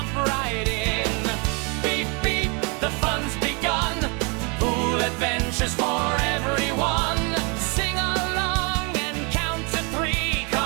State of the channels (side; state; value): left; quieter; 32.5 dB